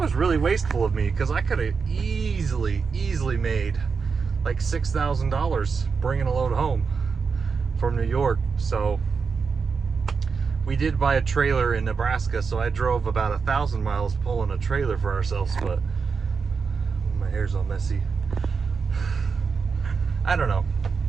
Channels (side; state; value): left; quieter; 5.4 dB